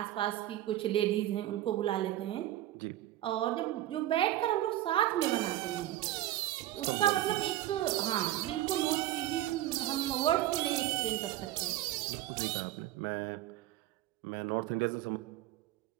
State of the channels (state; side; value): quieter; left; 14.2 dB